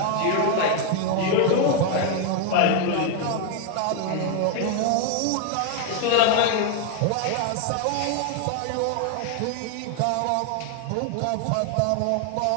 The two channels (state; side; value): different; both; correlation 0.01